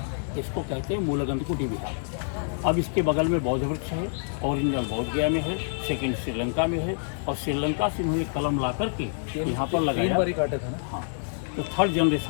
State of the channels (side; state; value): right; silent; 60 dB below the other